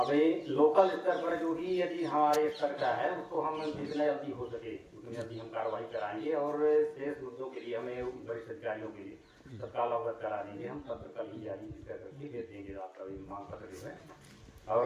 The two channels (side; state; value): both; identical; correlation 1.00